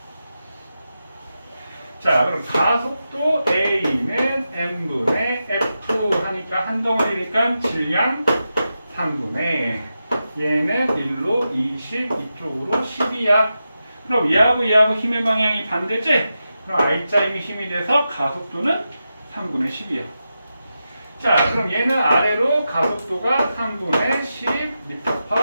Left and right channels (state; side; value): inverted; both; correlation -0.89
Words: 자, 그럼 가속도 A는 M분의 F 하니까 한 덩어리니까 질량 3분의 얘는 1로 20 이쪽으로 10이야. 그럼 얘하고 얘하고 힘의 방향이 반대지? 그럼 R자임이 힘이 돼서 가속도는 3분의 10이야. 자, 그럼 얘는 아래로 가속도가 3분의